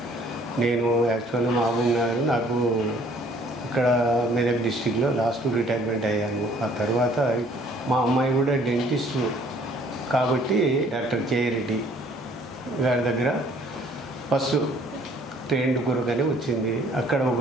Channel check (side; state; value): both; normal; correlation 0.58